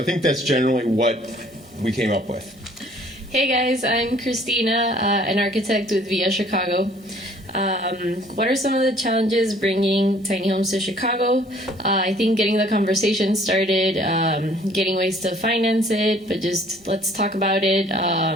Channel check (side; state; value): both; normal; correlation 0.56